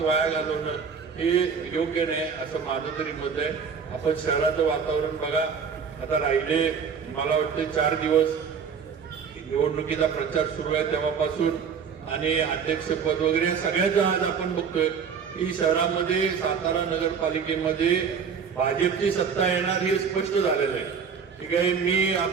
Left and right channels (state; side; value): quieter; left; 6.3 dB